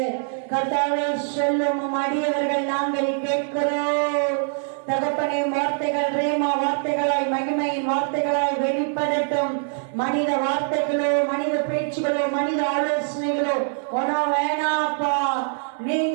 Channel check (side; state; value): left; silent; 63 dB below the other